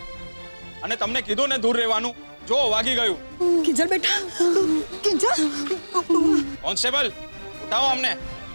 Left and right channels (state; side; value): inverted; both; correlation -1.00